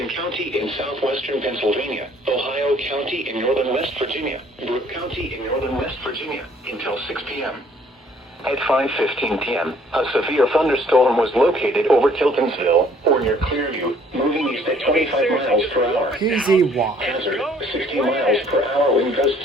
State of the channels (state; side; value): normal; both; correlation 0.60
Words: County and Southwestern Pennsylvania, Ohio County and Northern West Virginia, Brooke County and Northern West Virginia, until 6 p.m. At 5:15 p.m., a severe thunderstorm was located over Tiltonsville, or near Clearview, moving east at 25 miles per hour. PZY. Hazard, 60 miles per hour wind